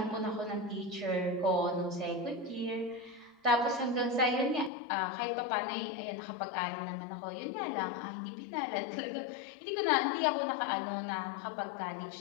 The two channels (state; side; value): drops out; right; at 4.7 s